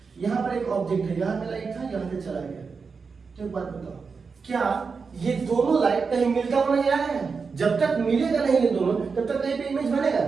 यहाँ पर एक ऑब्जेक्ट है, यहाँ पे लाइट था, यहाँ से चला गया। तो एक बात बताओ, क्या ये दोनों लाइट कहीं मिलता हुआ नजर आ रहा है? जब तक मिलेगा नहीं ये दोनों, तब तक कहीं पे इमेज बनेगा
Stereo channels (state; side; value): quieter; left; 5.1 dB